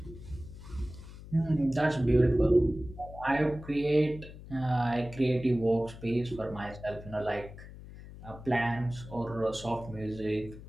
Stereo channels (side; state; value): left; noise; hum, 15 dB below the sound